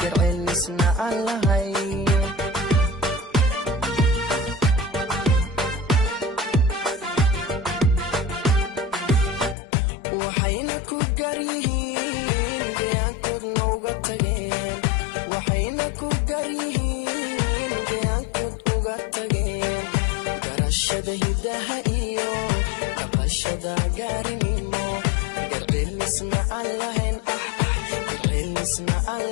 garceelisna aan lahayn waxayna ku garyihiin deegaankoodna uga tageen waxayna ku garyihiin deegaankood uga tageen garashada hidaha iyo dhaqashada gaarinimo garceelisna aan lahayn garceelisna aan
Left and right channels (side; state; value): right; drops out; at 9.6 s